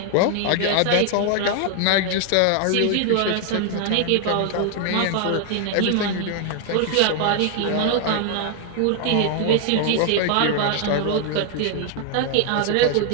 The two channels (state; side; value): different; both; correlation 0.00